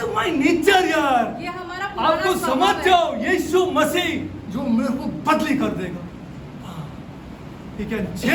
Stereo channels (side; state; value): both; identical; correlation 1.00